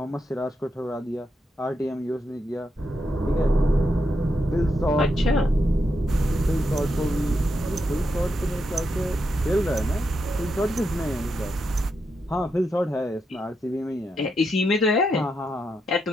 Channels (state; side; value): normal; both; correlation 0.83